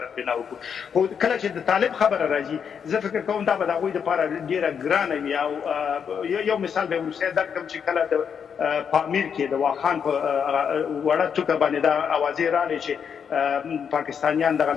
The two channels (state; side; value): quieter; right; 7.2 dB